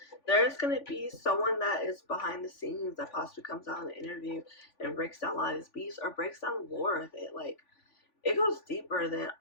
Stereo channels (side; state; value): right; late; 3.5 ms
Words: There's going to be someone that is behind the scenes that possibly comes out in an interview and breaks down a lot of these beefs, or breaks down the lore of it. Like, it goes deeper than,